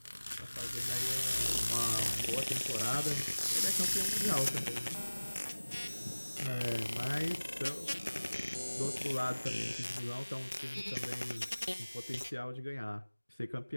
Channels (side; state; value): both; inverted; correlation -1.00